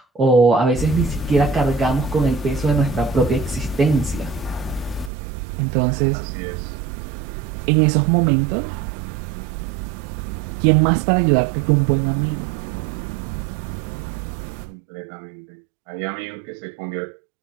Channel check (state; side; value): drops out; left; at 5.1 s